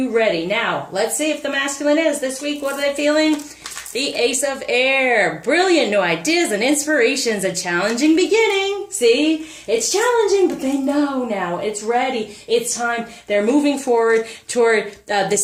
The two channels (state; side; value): identical; both; correlation 1.00